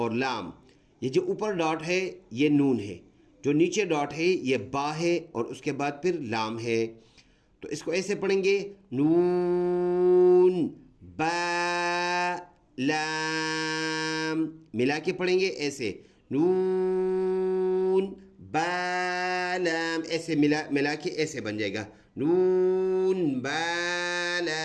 لام۔ یہ جو اوپر ڈاٹ ہے یہ نون ہے، جو نیچے ڈاٹ ہے یہ با ہے اور اس کے بعد پھر لام ہے، تو اس کو ایسے پڑھیں گے نون با لام، ملا کے پڑھیں گے ایسے نون با لام، ایسے ملا کے ایسے بن جائے گا نون با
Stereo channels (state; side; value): identical; both; correlation 1.00